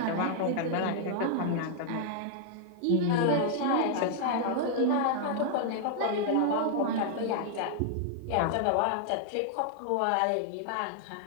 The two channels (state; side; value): different; both; correlation -0.01